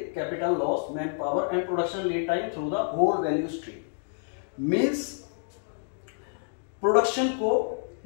loss, man power and production lead time through the whole value stream. Means production को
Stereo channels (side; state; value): right; silent; digital silence